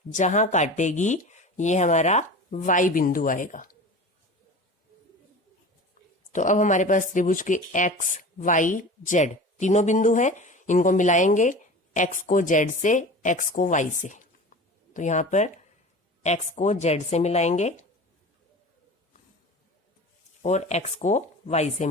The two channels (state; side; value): normal; both; correlation 0.36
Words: जहां काटेगी ये हमारा वाई बिंदु आएगा। तो अब हमारे पास त्रिभुज के एक्स वाई जेड तीनों बिंदु हैं। इनको मिलाएंगे, एक्स को जेड से, एक्स को वाई से। तो यहां पर एक्स को जेड से मिलाएंगे और एक्स को वाई से